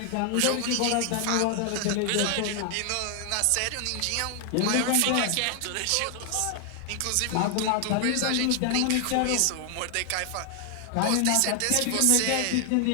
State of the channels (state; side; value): different; both; correlation 0.00